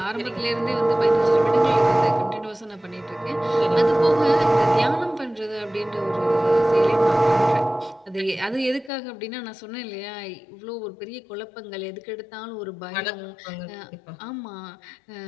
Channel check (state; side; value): drops out; right; at 8.9 s